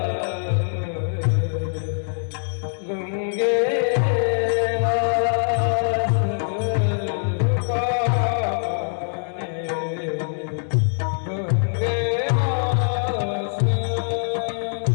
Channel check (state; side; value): silent; right; digital silence